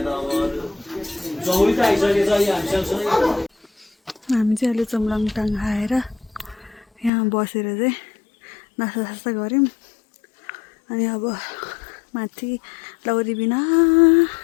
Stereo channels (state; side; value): drops out; right; at 7.1 s